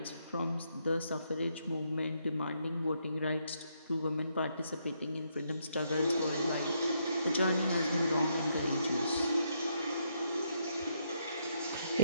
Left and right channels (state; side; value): inverted; both; correlation -0.76